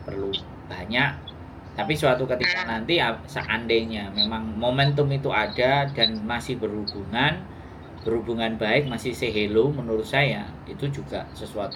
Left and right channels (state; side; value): identical; both; correlation 1.00